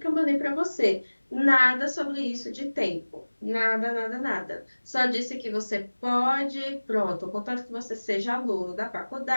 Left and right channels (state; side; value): inverted; both; correlation -1.00